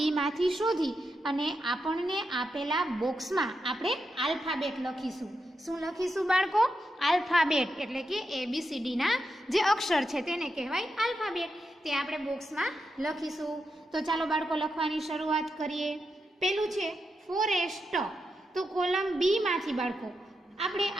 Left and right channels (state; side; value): normal; both; correlation 0.86